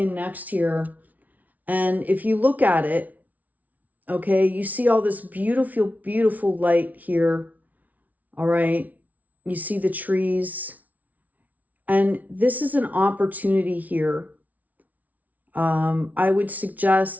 next here. And if you look at it, okay, you see all this beautiful, beautiful light here. All right. You see the trees. And this is an opportunity here. I would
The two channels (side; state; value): left; late; 0.074 ms